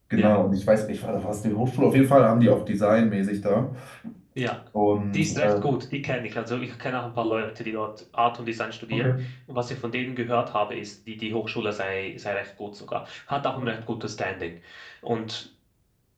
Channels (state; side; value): identical; both; correlation 1.00